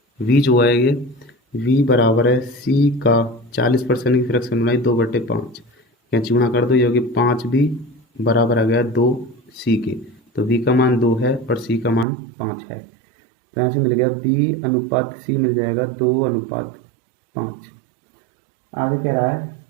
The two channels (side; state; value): left; drops out; at 12.1 s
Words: वी जो है ये वी बराबर है सी का 40% की फ्रैक्शन बनाई 2/5, यहाँ चूना कर दो, ये होगी 5 बी बराबर आ गया 2 सी के, तो बी का मान 2 है और सी का मान 5 है, तो यहाँ से मिल गया बी अनुपात सी मिल जाएगा 2:5। आगे कह रहा है